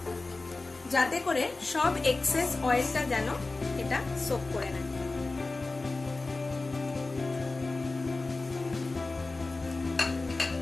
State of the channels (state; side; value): quieter; right; 3.4 dB